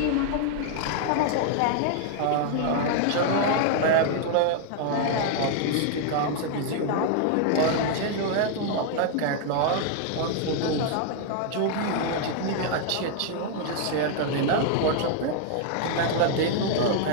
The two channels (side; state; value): both; different; correlation 0.00